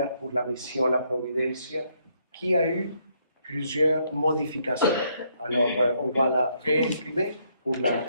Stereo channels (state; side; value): inverted; both; correlation -0.72